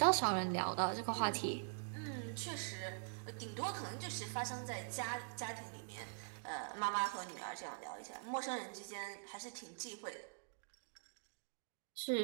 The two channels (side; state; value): left; silent; digital silence